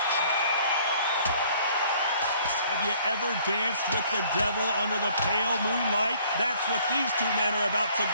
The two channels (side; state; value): both; inverted; correlation -0.58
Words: Have you ever danced with the devil under the pale moonlight? That's what these two men are about to